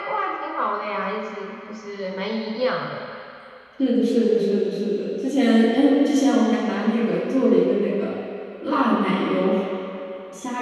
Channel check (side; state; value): both; identical; correlation 1.00